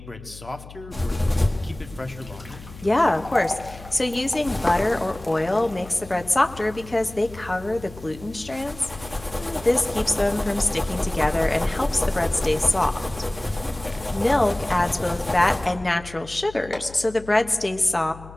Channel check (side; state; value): left; noise; hum, 17 dB below the sound